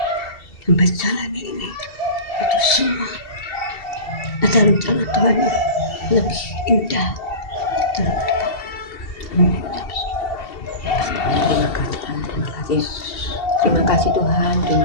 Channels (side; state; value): right; late; 2.7 ms